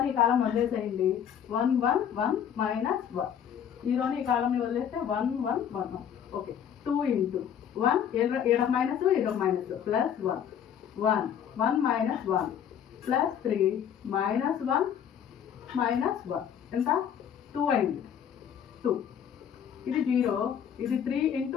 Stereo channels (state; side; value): quieter; right; 8.8 dB